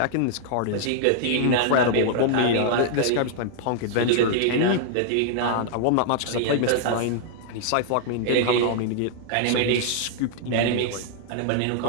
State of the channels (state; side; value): different; both; correlation 0.00